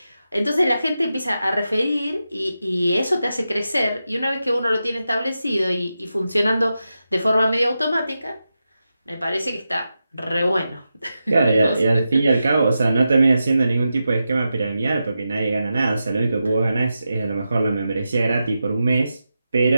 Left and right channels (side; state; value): both; inverted; correlation -0.90